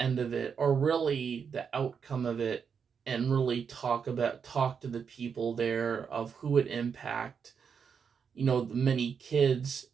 of it, or really the outcome of it, and really talk to the people there of who it impact. The many kids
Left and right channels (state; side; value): quieter; left; 6.6 dB